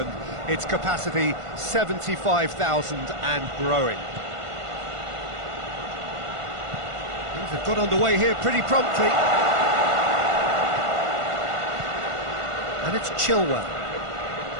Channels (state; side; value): late; left; 1.5 ms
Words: Its capacity 75,000 and growing. Things have got underway here pretty promptly. And it's Chilwell.